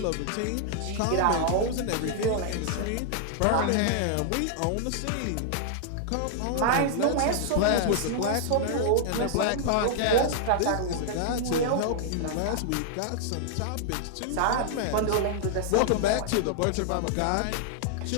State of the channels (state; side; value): different; both; correlation -0.01